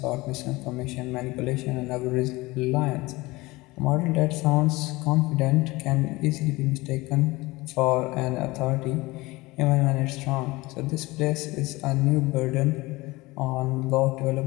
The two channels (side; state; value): right; quieter; 21.5 dB